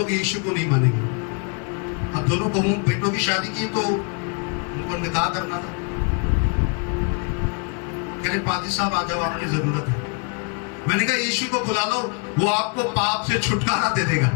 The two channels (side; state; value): right; quieter; 35.9 dB